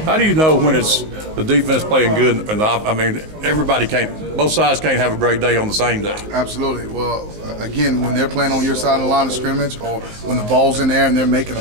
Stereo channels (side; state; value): left; late; 19 ms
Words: How do you know when it's the defense playing good? And I mean, both sides can't have a great day on the same day. Absolutely. Well, again, when they're playing on your side of the line of scrimmage, or when the ball's in there and they're making a